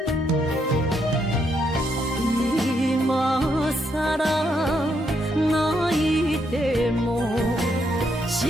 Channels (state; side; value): normal; both; correlation 0.77